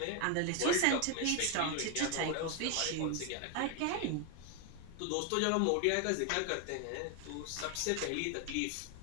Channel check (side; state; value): both; different; correlation 0.01